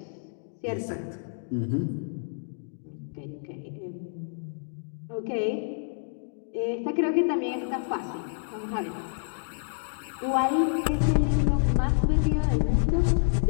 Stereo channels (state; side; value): silent; right; digital silence